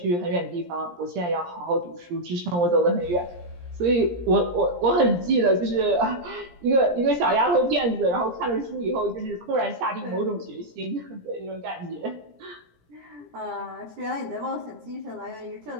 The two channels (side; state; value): left; late; 17 ms